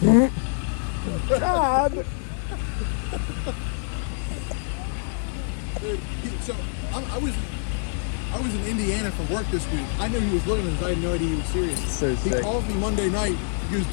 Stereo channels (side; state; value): right; silent; 61 dB below the other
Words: God. Dude, so I was in Indiana for work this week. I knew he was looking at this. I had no idea he was serious. So He sick. called me Monday night. He goes,